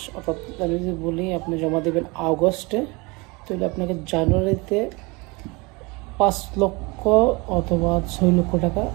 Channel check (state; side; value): quieter; left; 26.6 dB